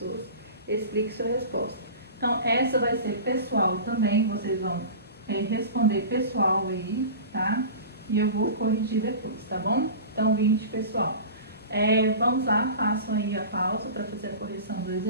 Explique sua resposta. Então, essa vai ser pessoal também, vocês vão responder pessoal aí, tá? E eu vou corrigir depois, tá bom? Então, 20, pessoal. Vamos lá, façam aí a pausa para fazer a correção do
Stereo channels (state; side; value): inverted; both; correlation -0.34